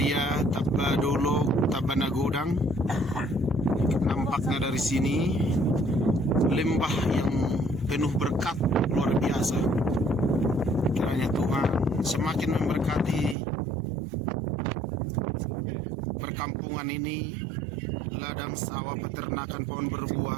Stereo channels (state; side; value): drops out; left; at 13.4 s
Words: Tabadolok, Tabanagodang. Nampaknya dari sini lembah yang penuh berkat luar biasa. Kiranya Tuhan semakin memberkati perkampungan ini, ladang sawah, peternakan, pohon